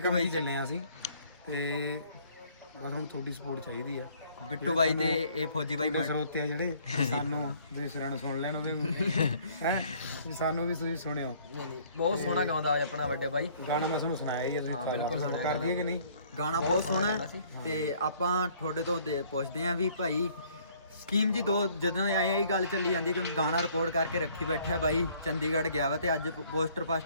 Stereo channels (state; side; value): inverted; both; correlation -0.59